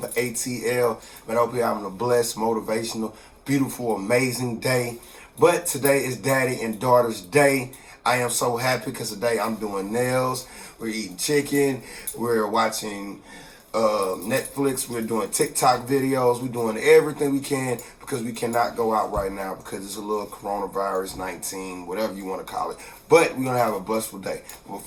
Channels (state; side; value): identical; both; correlation 1.00